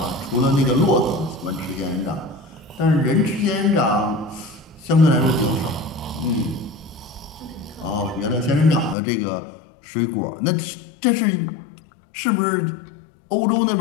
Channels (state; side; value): drops out; right; at 9.0 s